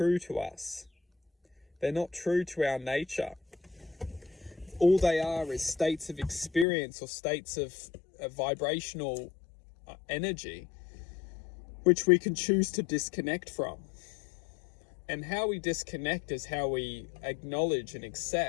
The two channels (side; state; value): right; drops out; at 6.7 s